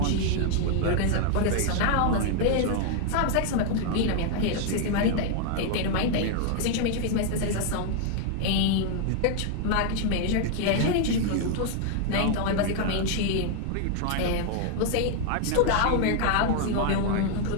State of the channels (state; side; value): different; both; correlation 0.00